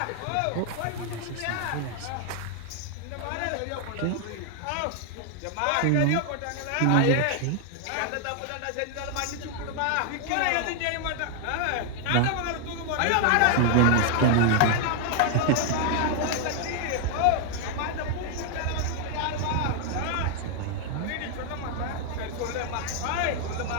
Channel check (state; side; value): different; both; correlation 0.00